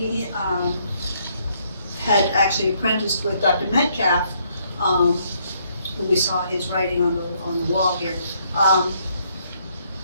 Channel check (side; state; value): both; inverted; correlation -0.70